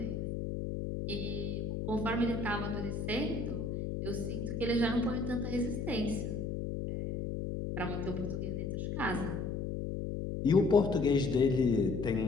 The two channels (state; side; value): noise; left; hum, 3 dB below the sound